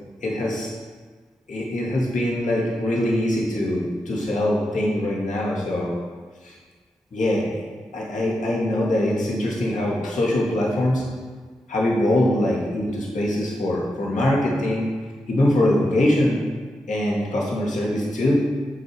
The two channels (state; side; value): normal; both; correlation 0.86